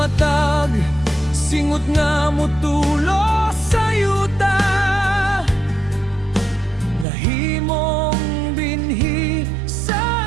singot nga motulo sa yuta, nahimong binhi sa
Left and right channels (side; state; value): left; drops out; at 7.1 s